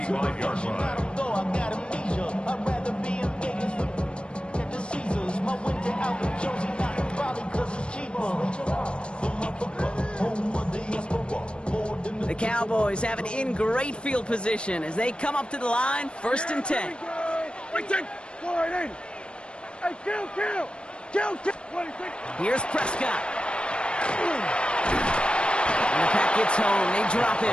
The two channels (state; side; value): late; right; 0.056 ms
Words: line. The Cowboys have it in great field position as they come up to the line, first and 10. Hey, kill. Here's Prescott. And the pack gets home. They drop